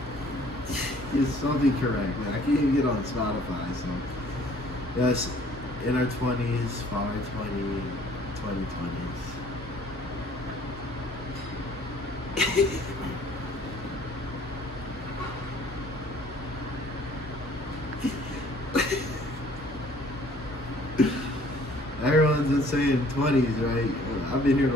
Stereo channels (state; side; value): normal; both; correlation 0.56